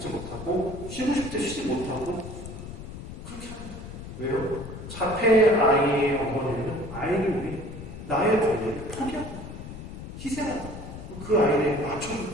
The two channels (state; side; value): noise; left; rumble, 11 dB below the sound